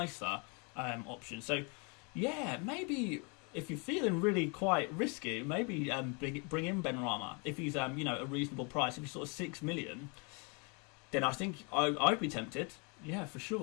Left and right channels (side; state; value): right; quieter; 33.4 dB